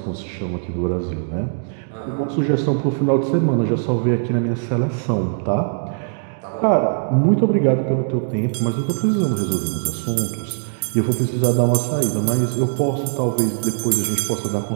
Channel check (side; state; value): left; silent; digital silence